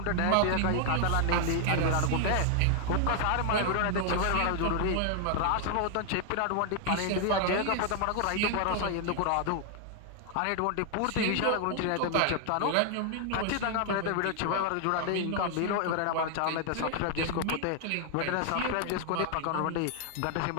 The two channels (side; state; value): both; different; correlation 0.00